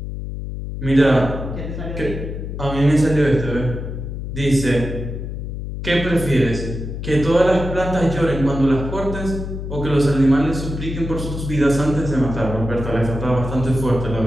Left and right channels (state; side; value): noise; left; hum, 6 dB below the sound